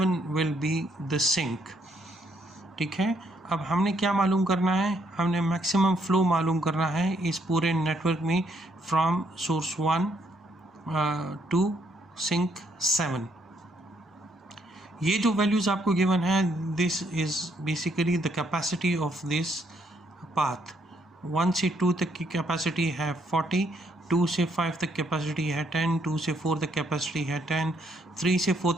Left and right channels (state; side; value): normal; both; correlation 0.71